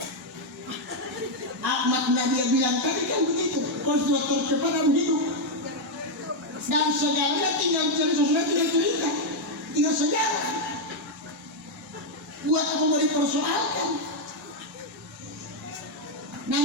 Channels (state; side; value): normal; both; correlation 0.00